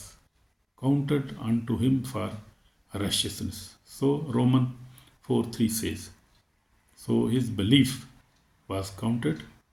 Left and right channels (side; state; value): both; identical; correlation 1.00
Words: counted unto him for righteousness. So Romans 4:3 says, so his belief was counted